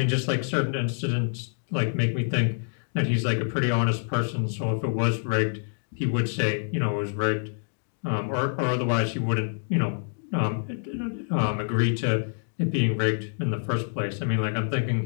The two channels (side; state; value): right; silent; digital silence